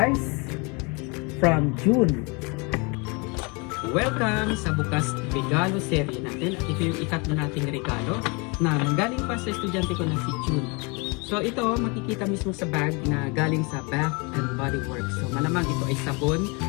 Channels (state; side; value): quieter; right; 30.3 dB